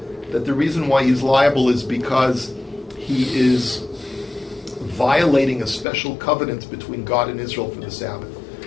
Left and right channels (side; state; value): right; drops out; at 5.9 s